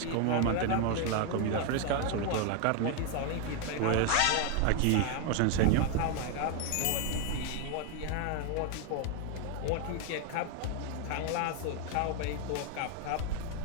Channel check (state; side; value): different; both; correlation 0.01